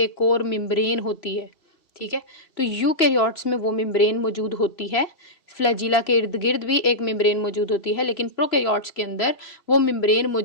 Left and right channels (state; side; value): late; right; 2.7 ms